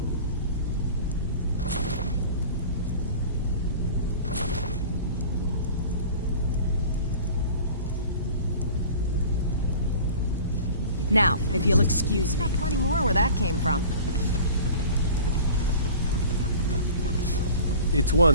Now, if you'll excuse me. Got plenty more where that came from. It's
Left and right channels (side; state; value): both; inverted; correlation -0.42